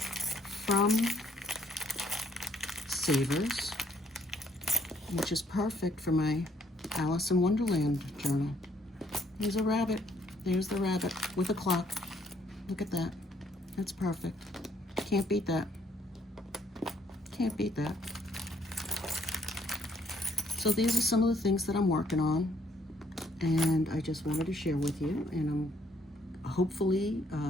SAVERS, which is perfect for my Alice in Wonderland journal. There's a rabbit. There's the rabbit with a clock. Look at that. That's perfect. Can't beat that. Can't beat that. So these are some of the things that I'm working on, and I just wanted to share with you. And I'm hopefully,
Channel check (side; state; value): both; normal; correlation 0.67